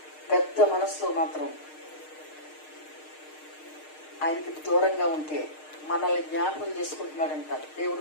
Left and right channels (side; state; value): right; late; 6.5 ms